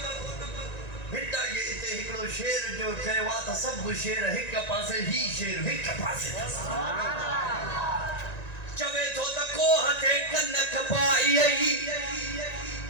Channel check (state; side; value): late; right; 1.9 ms